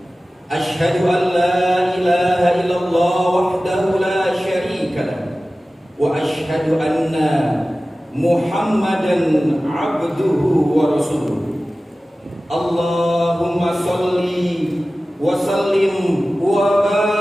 أشهد أن لا إله إلا الله وحده لا شريك له وأشهد أن محمدا عبده ورسوله اللهم صل وسلم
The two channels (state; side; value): normal; both; correlation 0.96